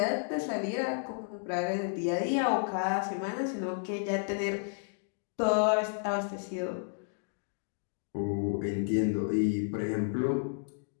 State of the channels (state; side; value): silent; right; digital silence